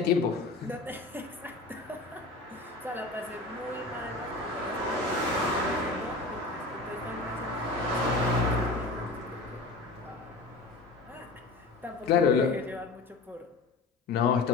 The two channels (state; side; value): quieter; right; 3.3 dB